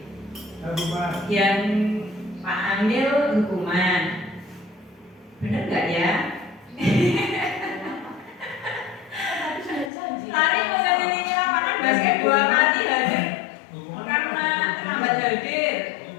yang Pak Amil hukuman. Bener nggak ya? Lari mengelilingi lapangan basket 2 kali hadir karena terlambat hadir.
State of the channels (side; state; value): right; drops out; at 9.9 s